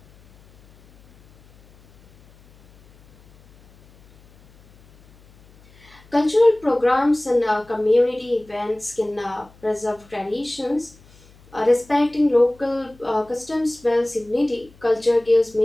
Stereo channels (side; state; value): left; noise; hum, 28 dB below the sound